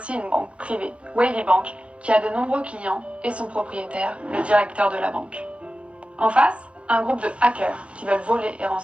une banque privée, Wavy Bank, qui a de nombreux clients et son propriétaire, le directeur de la banque. En face, un groupe de hackers qui veulent voler et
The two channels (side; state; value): left; late; 0.061 ms